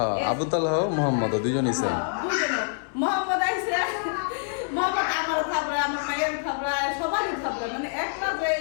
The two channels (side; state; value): right; silent; 61 dB below the other